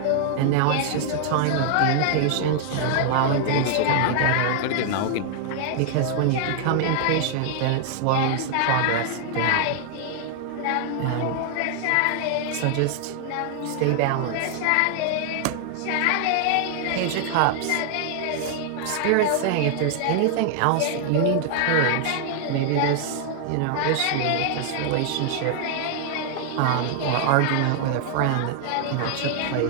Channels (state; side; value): different; both; correlation 0.00